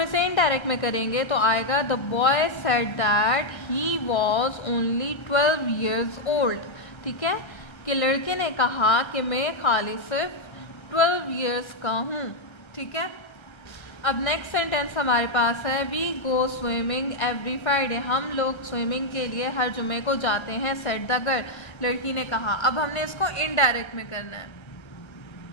इसे इनडायरेक्ट में करेंगे तो आएगा the boy said that he was only 12 years old। ठीक है, कि लड़के ने कहा कि मैं खाली सिर्फ 12 years का हूँ। ठीक है, अब नेक्स्ट सेंटेंस हमारे पास है we go swimming every Friday. हम लोग स्विमिंग के लिए हर जुमे को जाते हैं सेड द गर्ल। लड़की ने कहा। अब हमने इसको इनडायरेक्ट में करना है।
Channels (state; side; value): late; right; 1.3 ms